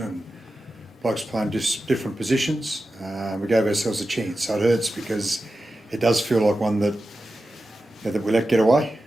blokes playing different positions. We gave ourselves a chance, so it hurts because it does feel like one that that we let get away,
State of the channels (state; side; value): normal; both; correlation 0.92